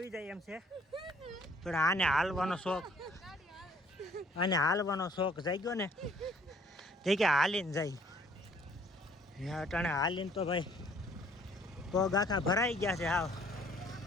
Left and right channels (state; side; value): normal; both; correlation 0.60